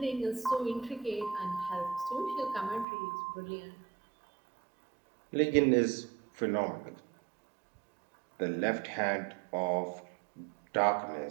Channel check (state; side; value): drops out; left; at 2.9 s